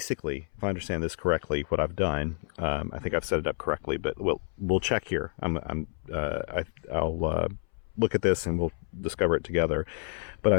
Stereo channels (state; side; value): silent; right; 58 dB below the other